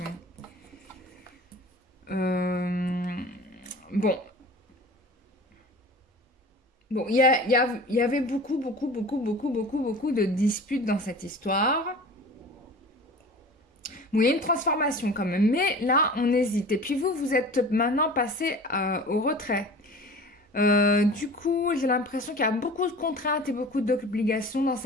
Bon. Bon, il y avait beaucoup de disputes dans cette histoire. Bon, il y a une transformation quand même. Mais là, on hésite. Et puis vous, vous êtes maintenant passé au retrait. Du coup, j'ai l'impression qu'il y a beaucoup de contraintes et beaucoup d'obligations dans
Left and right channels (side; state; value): both; normal; correlation 0.40